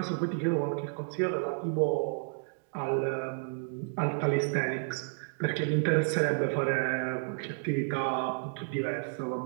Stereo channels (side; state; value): left; silent; digital silence